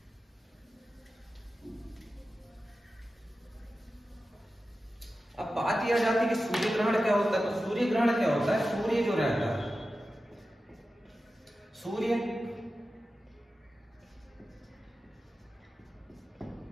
अब बात यह आ जाती है कि सूर्य ग्रहण क्या होता है। तो सूर्य ग्रहण क्या होता है, सूर्य जो रहता है, सूर्य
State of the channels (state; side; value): normal; both; correlation 0.93